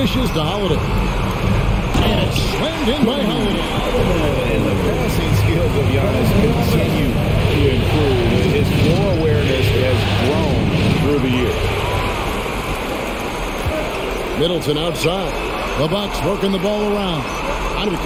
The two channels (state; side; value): identical; both; correlation 1.00